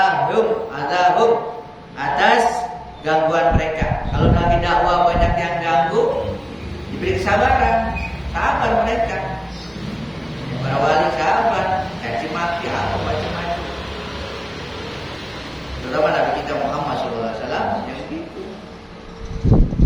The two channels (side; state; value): both; identical; correlation 1.00